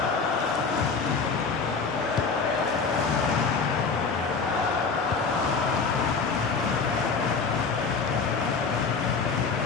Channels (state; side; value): quieter; right; 4.9 dB